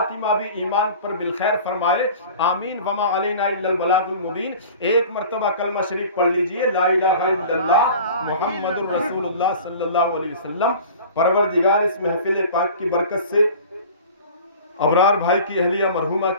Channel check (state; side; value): inverted; both; correlation -0.41